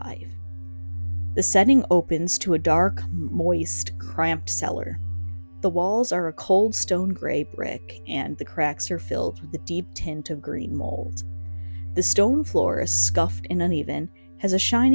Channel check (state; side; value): inverted; both; correlation -1.00